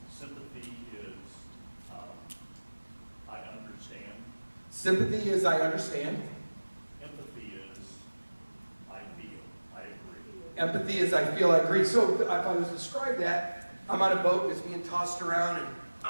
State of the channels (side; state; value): both; inverted; correlation -1.00